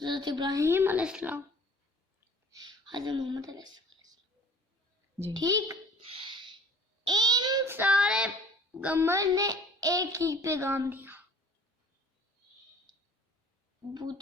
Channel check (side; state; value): both; normal; correlation 0.50